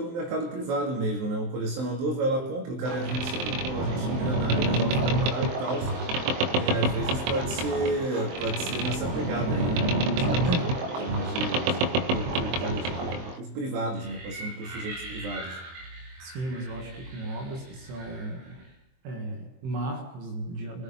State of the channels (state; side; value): late; left; 23 ms